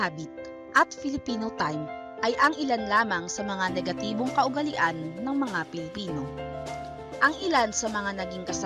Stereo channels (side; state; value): both; identical; correlation 1.00